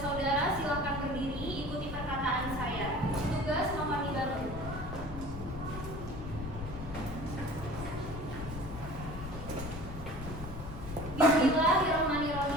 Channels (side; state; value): left; noise; rumble, 9 dB below the sound